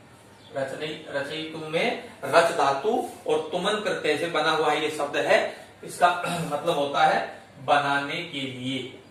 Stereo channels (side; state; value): both; identical; correlation 1.00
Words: रचयितुम में रच धातु और तुमन प्रत्यय से बना हुआ ये शब्द है। इसका मतलब होता है बनाने के लिए,